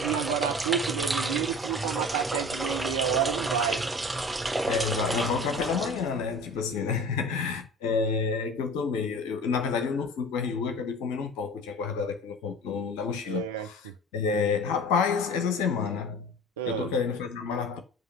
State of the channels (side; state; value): both; normal; correlation 0.39